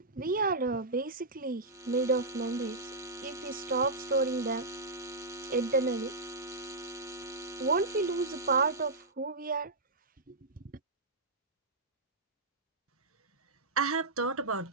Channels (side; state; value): left; quieter; 3.1 dB